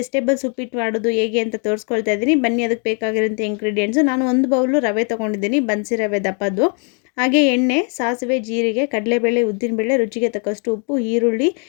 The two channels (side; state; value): right; quieter; 39.0 dB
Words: ಉಪ್ಪಿಟ್ಟು ಮಾಡೋದು ಹೇಗೆ ಅಂತ ತೋರಿಸ್ಕೊಳ್ತಾ ಇದ್ದೀನಿ. ಬನ್ನಿ, ಅದಕ್ಕೆ ಬೇಕಾಗಿರೋಂಥ ಇಂಗ್ರೀಡಿಯೆಂಟ್ಸು. ನಾನು ಒಂದು ಬೌಲು ರವೆ ತೊಗೊಂಡಿದ್ದೀನಿ, ಬನ್ಸಿ ರವೆ ದಪ್ಪದ್ದು. ಹಾಗೆ ಎಣ್ಣೆ, ಸಾಸಿವೆ, ಜೀರಿಗೆ, ಕಡಲೆಬೇಳೆ, ಉದ್ದಿನಬೇಳೆ, ರುಚಿಗೆ ತಕ್ಕಷ್ಟು ಉಪ್ಪು, ಈರುಳ್ಳಿ,